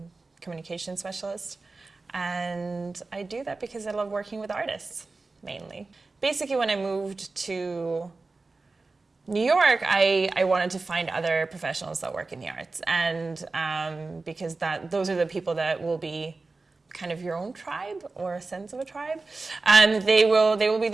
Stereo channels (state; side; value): quieter; left; 3.6 dB